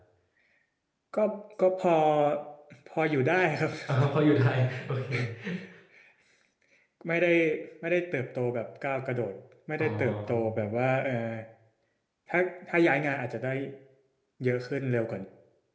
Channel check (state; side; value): identical; both; correlation 1.00